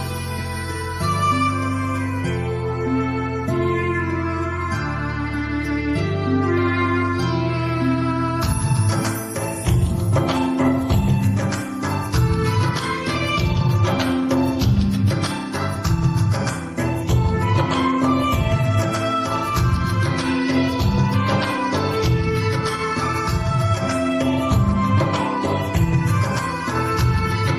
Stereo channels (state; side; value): identical; both; correlation 1.00